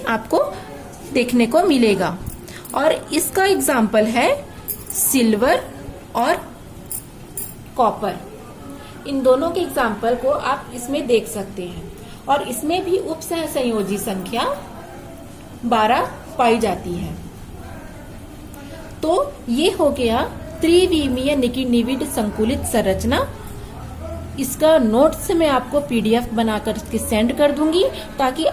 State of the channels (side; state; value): both; identical; correlation 1.00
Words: आपको देखने को मिलेगा। और इसका एग्जाम्पल है सिल्वर और कॉपर। इन दोनों के एग्जाम्पल को आप इसमें देख सकते हैं। और इसमें भी उपसह संयोजी संख्या 12 पाई जाती है। तो ये हो गया त्रिविमीय निविड संकुलित संरचना। इसका नोट्स मैं आपको PDF बनाकर के सेंड कर दूंगी ताकि